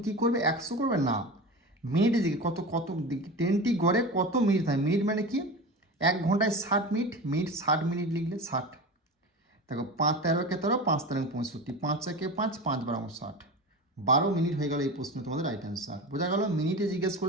কী করবে, 100 করবে না, মিনিটে দিকে কত ট্রেনটি গড়ে কত মিনিট থাকে, মিনিট মানে কি, 1 ঘন্টায় 60 মিনিট, মিনিট 60 মিনিট লিখলে 60। দেখো 5 13 13, 5 13 65, 5 1 5, 5 12 60, 12 মিনিট হয়ে গেল এই প্রশ্ন তোমাদের রাইট অ্যান্সার। বোঝা গেল? মিনিটে জিজ্ঞেস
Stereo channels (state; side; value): normal; both; correlation 0.28